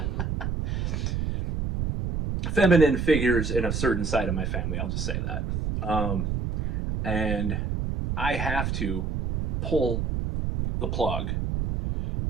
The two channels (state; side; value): noise; right; rumble, 1 dB below the sound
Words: feminine figures in a certain side of my family. I'll just say that. And I have to pull the plug